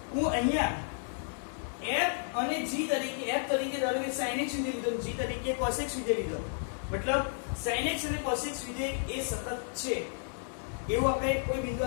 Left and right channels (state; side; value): silent; right; 56 dB below the other